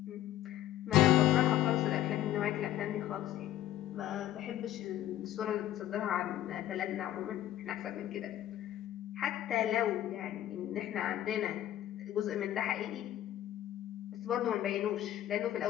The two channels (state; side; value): quieter; right; 13.0 dB